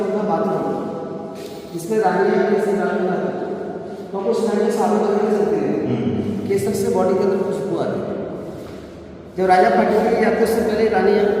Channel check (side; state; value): both; identical; correlation 1.00